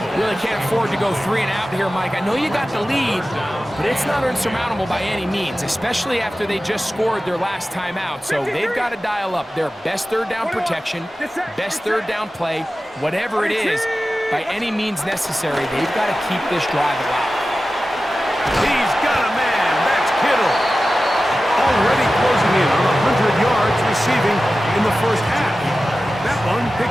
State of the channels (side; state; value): both; normal; correlation 0.95